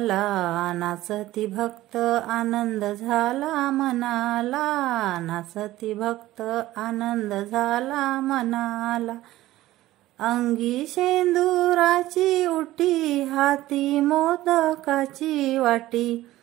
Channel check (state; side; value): quieter; left; 16.0 dB